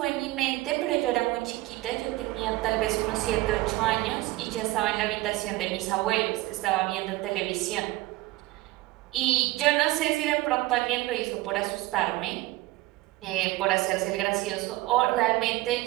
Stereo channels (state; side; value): quieter; left; 18.6 dB